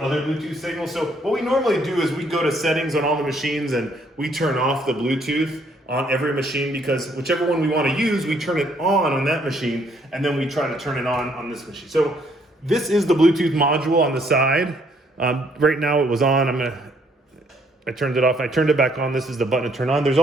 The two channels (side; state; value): both; normal; correlation 0.67